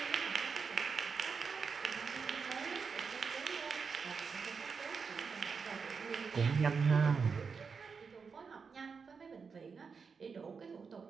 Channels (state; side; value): quieter; left; 5.5 dB